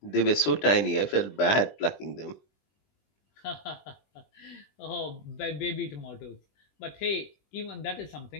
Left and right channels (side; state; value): right; late; 20 ms